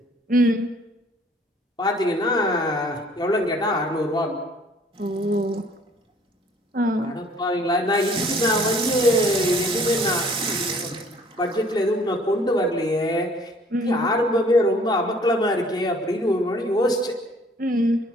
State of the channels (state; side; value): normal; both; correlation 0.57